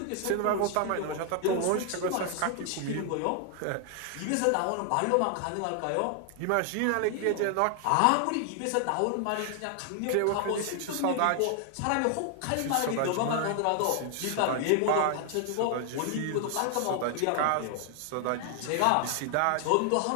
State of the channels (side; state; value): both; different; correlation 0.00